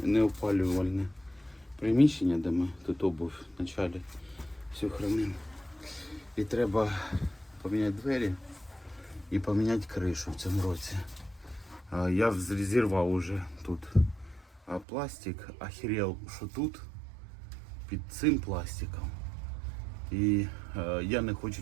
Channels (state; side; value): drops out; left; at 14.9 s